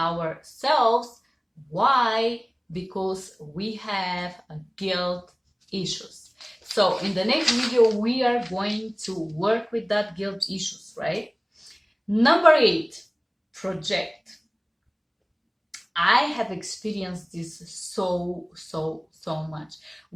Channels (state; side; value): identical; both; correlation 1.00